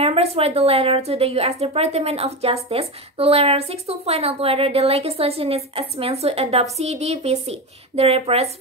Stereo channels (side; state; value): both; normal; correlation 0.19